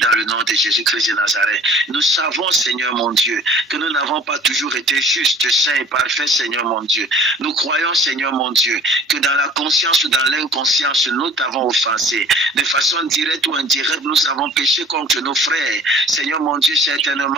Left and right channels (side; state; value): both; normal; correlation 0.48